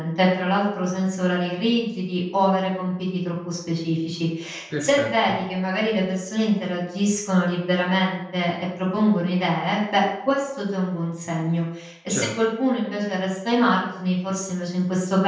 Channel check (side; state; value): both; identical; correlation 1.00